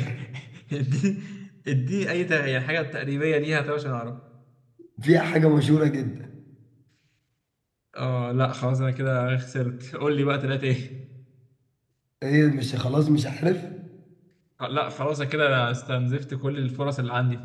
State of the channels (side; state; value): both; identical; correlation 1.00